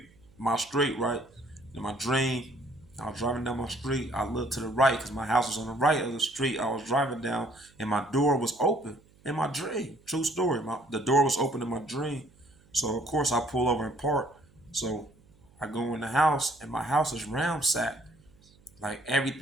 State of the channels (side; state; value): right; noise; hum, 29 dB below the sound